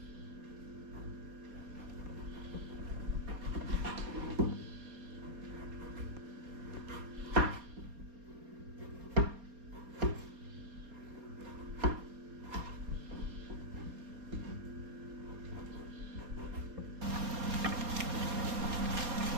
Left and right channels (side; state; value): left; late; 4.3 ms